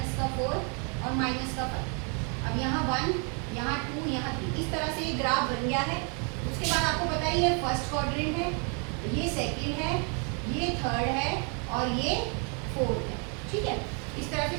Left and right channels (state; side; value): quieter; left; 37.5 dB